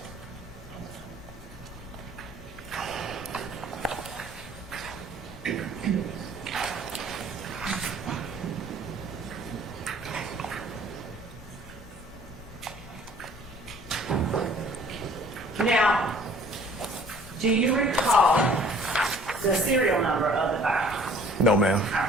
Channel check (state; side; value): normal; both; correlation 0.53